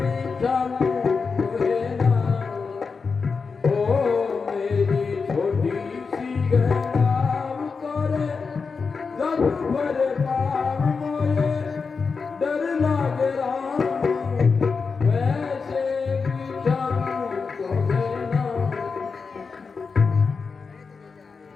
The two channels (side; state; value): right; quieter; 5.0 dB